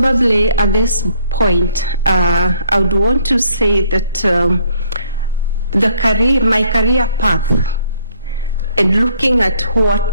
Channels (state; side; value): inverted; both; correlation -0.64